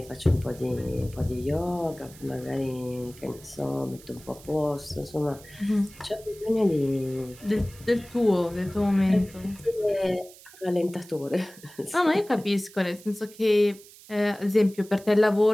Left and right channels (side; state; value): right; noise; hiss, 21 dB below the sound